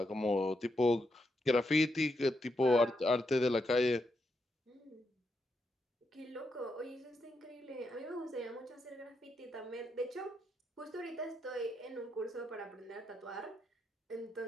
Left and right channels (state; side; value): normal; both; correlation 0.82